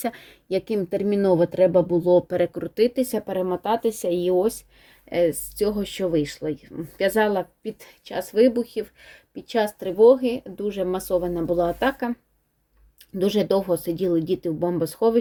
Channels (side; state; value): both; identical; correlation 1.00